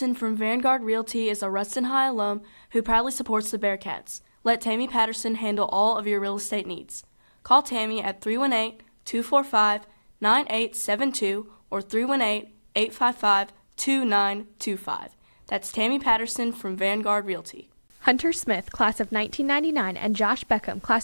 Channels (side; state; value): both; inverted; correlation -1.00